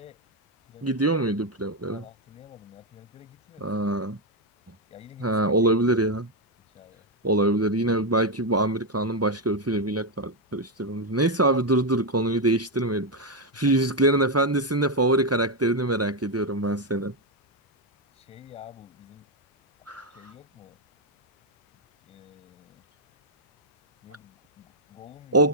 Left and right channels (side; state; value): both; normal; correlation 0.05